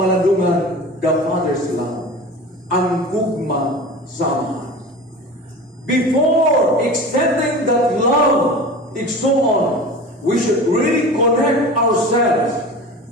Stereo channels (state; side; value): normal; both; correlation 0.34